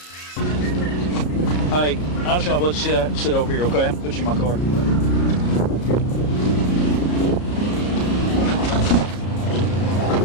Hey, I'm just gonna let you sit over here, okay? I'm gonna put you in my car.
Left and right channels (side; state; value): right; late; 33 ms